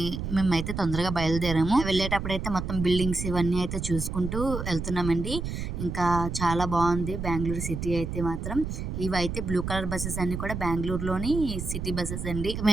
మేమైతే తొందరగా బయలుదేరాము. వెళ్ళేటప్పుడు అయితే మొత్తం బిల్డింగ్స్ ఇవన్నీ అయితే చూసుకుంటూ వెళ్తున్నామండి. ఇంకా చాలా బాగుంది బెంగళూరు సిటీ అయితే మాత్రం. ఇవైతే బ్లూ కలర్ బస్సెస్ అన్ని కూడా బెంగళూరులోని సిటీ బస్సెస్ అండి.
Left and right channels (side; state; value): right; noise; rumble, 5 dB below the sound